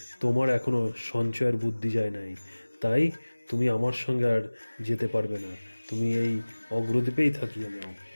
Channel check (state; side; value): inverted; both; correlation -1.00